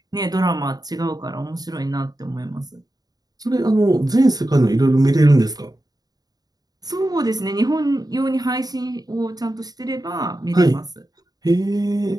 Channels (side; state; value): left; late; 0.19 ms